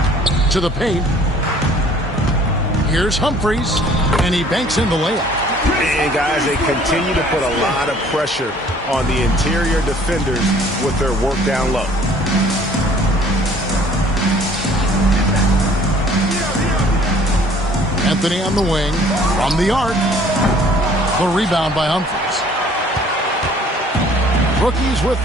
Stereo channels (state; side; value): normal; both; correlation 0.55